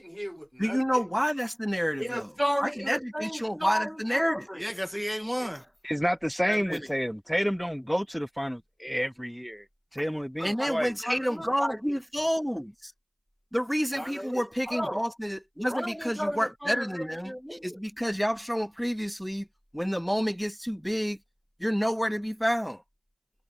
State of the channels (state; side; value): identical; both; correlation 1.00